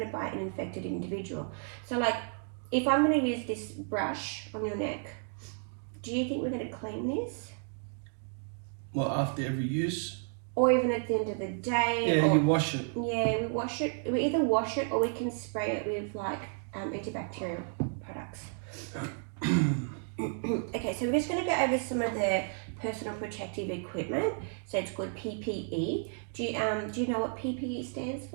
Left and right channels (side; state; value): left; silent; 56 dB below the other